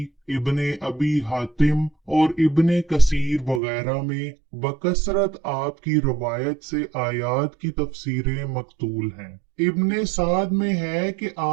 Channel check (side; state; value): left; drops out; at 3.6 s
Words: इब्ने अबी हातिम और इब्ने कसीर वगैरह में बकसरत आपकी रवायत से आयात की तफसीरें मकतूल हैं। इब्ने साद में है कि